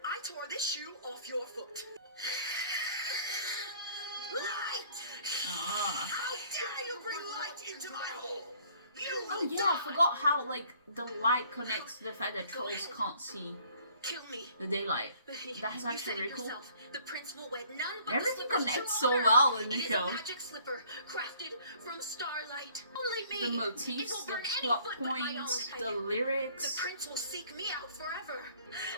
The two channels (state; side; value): inverted; both; correlation -0.57